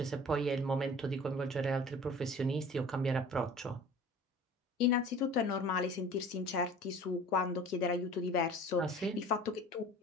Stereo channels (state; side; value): normal; both; correlation 0.44